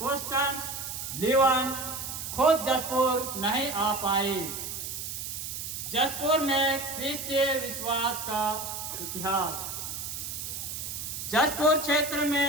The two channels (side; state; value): right; noise; hiss, 6 dB below the sound